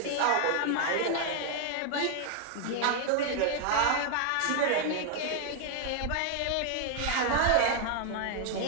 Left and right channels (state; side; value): different; both; correlation 0.00